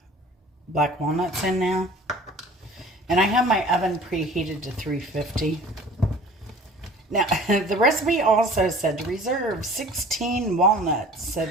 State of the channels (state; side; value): normal; both; correlation 0.46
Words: black walnuts in now. And I have my oven preheated to 350. Now, the recipe also said to reserve 16 walnuts so